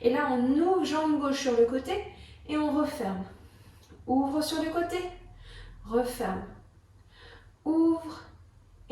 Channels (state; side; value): identical; both; correlation 1.00